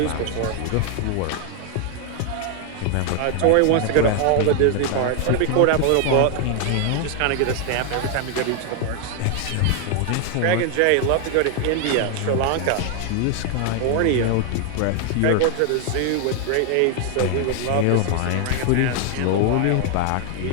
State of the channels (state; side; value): different; both; correlation 0.00